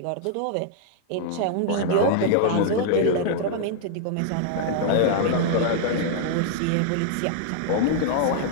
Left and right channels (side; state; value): both; different; correlation -0.01